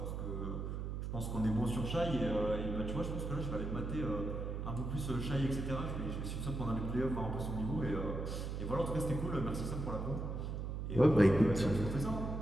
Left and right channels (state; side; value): noise; right; hum, 4 dB below the sound